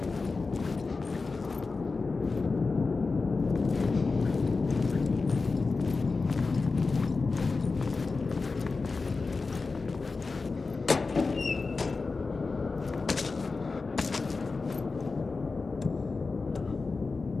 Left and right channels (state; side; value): quieter; right; 4.1 dB